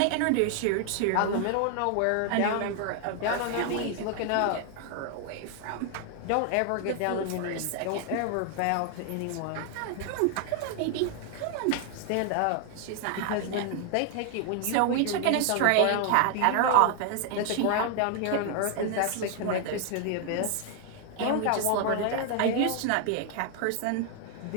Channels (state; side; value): different; both; correlation 0.00